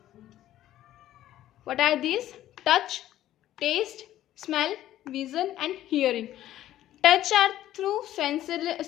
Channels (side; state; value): right; quieter; 13.2 dB